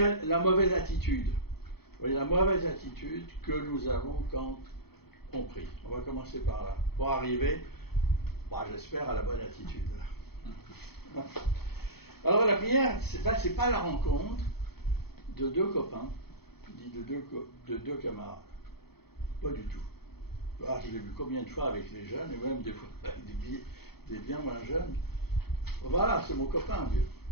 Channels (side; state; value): right; late; 0.96 ms